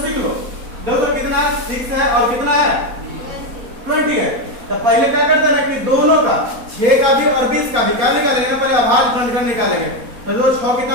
सीख लो। देखो कितना 6 है और कितना है 20 है। तो पहले क्या करते हैं कि दोनों का 6 का भी और 20 का भी क्या निकालेंगे ना, पहले अभाज्य गुणनखंड निकालेंगे। तो जो 6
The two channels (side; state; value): left; late; 4.1 ms